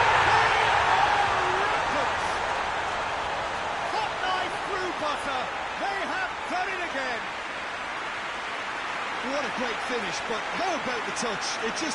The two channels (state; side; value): identical; both; correlation 1.00